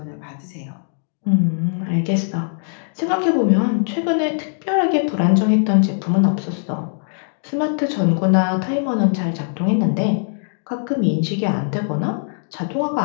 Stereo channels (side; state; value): right; silent; digital silence